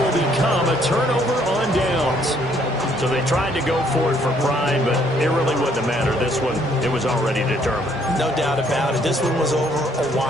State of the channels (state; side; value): normal; both; correlation 0.66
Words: become a turnover on downs. So they tried to go for it for pride, but it really wouldn't have mattered. This one, it was already determined. No doubt about it. This one was over a